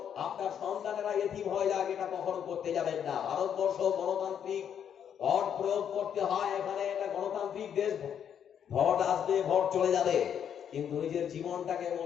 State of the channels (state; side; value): quieter; right; 8.6 dB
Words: আপনার সন্তানেরা এতিম হয়ে যায়, এটা কখনো করতে যাবেন না। ভারতবর্ষ গণতান্ত্রিক ভোট প্রয়োগ করতে হয়, এখানে একটা গণতান্ত্রিক দেশ। ভোট আসবে, ভোট চলে যাবে, কিন্তু নিজের জীবনটাকে